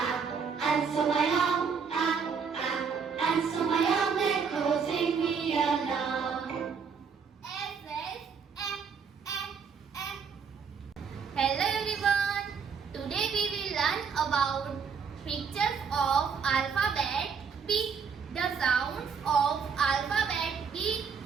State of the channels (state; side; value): quieter; left; 6.1 dB